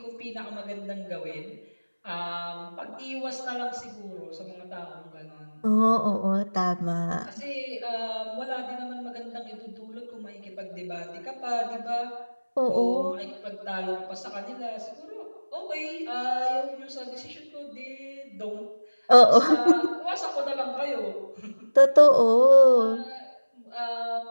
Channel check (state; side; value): inverted; both; correlation -1.00